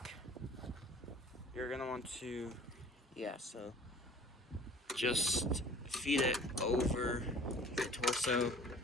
you're gonna want to, yeah, so just feed it over the torso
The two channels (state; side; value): normal; both; correlation 0.49